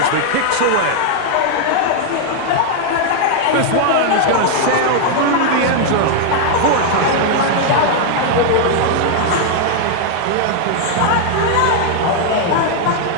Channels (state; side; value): different; both; correlation 0.00